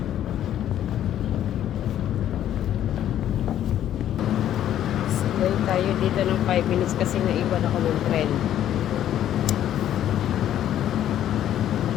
Sakay tayo dito ng 5 minutes kasi naiwan ako ng tren.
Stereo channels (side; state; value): right; quieter; 11.3 dB